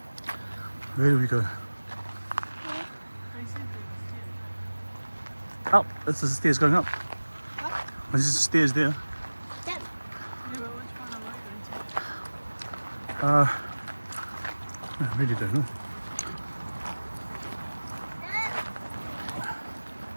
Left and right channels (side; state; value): both; inverted; correlation -1.00